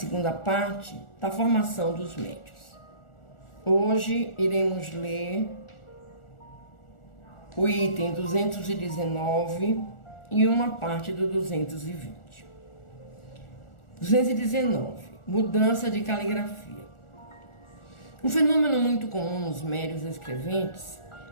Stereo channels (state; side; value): late; right; 1.4 ms